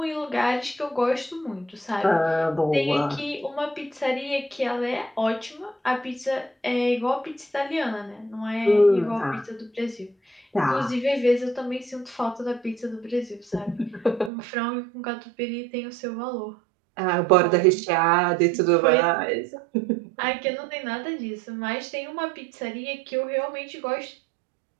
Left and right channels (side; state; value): left; drops out; at 14.3 s